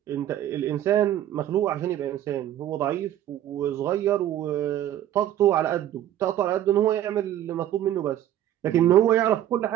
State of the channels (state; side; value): quieter; left; 11.9 dB